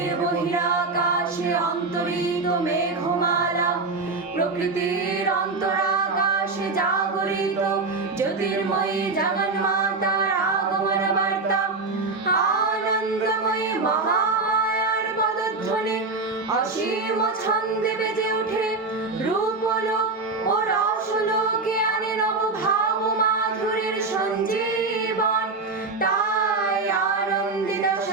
বহিরাকাশে অন্তরিত মেঘমালা প্রকৃতির অন্তরাকাশে জাগরিত জ্যোতির্ময়ী জগন্মাতার আগমন বার্তা আনন্দময়ী মহামায়ার পদধ্বনি অসীম ছন্দে বেজে ওঠে রূপলোক ও রসলোকে আনে নবভাব মাধুরীর সঞ্জীবন তাই আনন্দিতা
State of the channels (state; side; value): quieter; left; 3.8 dB